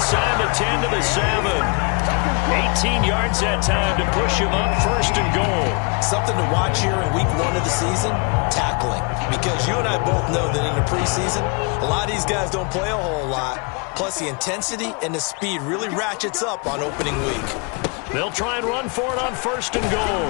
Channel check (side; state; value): right; quieter; 33.6 dB